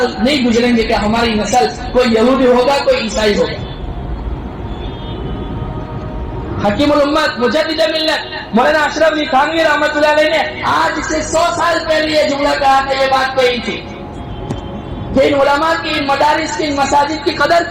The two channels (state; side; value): identical; both; correlation 1.00